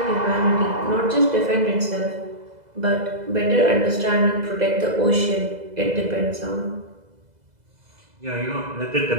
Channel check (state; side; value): late; left; 2.0 ms